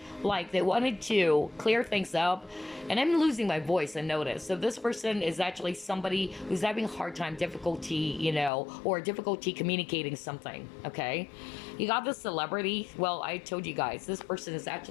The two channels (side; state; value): right; drops out; at 8.5 s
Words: Like, they wanted to clear things up. And I'm losing my voice, I notice. So this person is actually somebody who's having a hard time, difficulty, or difficulty communicating something, okay? You got this celebrity. Well, I told you guys, this person is